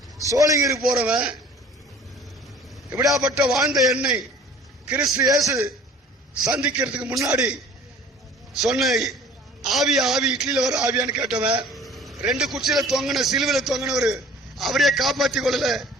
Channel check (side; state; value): both; normal; correlation 0.48